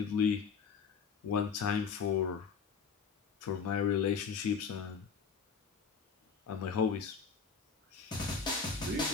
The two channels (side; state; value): right; quieter; 5.9 dB